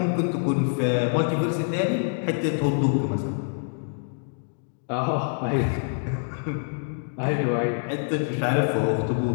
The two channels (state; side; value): silent; right; digital silence